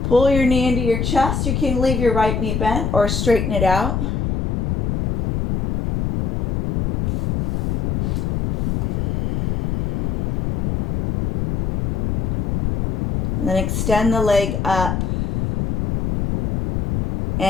Pull your knee into your chest. You can leave your right knee bent or straighten it out. And then extend the leg up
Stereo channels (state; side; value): noise; left; rumble, 1 dB below the sound